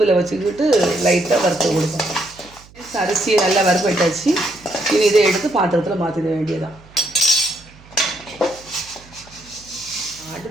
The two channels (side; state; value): right; noise; hum, 24 dB below the sound